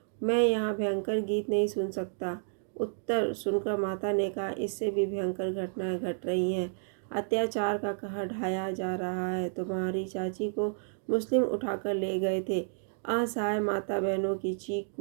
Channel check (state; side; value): silent; left; digital silence